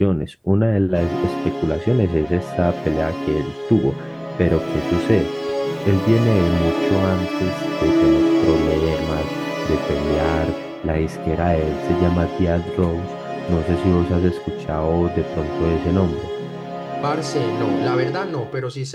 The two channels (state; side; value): identical; both; correlation 1.00